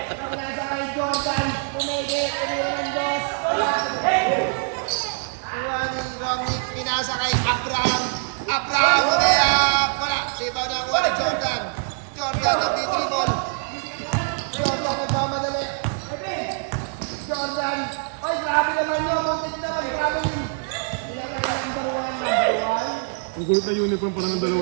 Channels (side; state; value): left; silent; 59 dB below the other